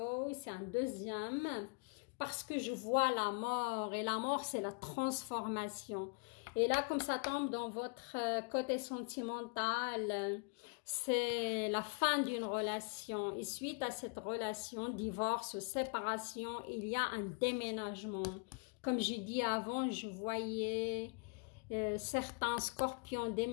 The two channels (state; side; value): quieter; right; 36.8 dB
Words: c'est un deuxième, parce que je vois la mort, et la mort, c'est la transformation. Et là, comme ça tombe dans votre côté sentimental, c'est la fin d'une relation. Et suite à cette relation, divorce ou séparation, il y a un déménagement. Comme j'ai dit avant, je voyais certains scorpions